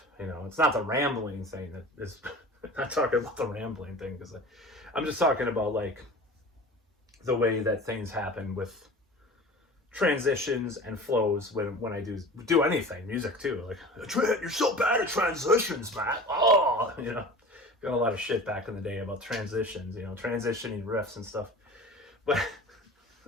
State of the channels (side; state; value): both; normal; correlation 0.38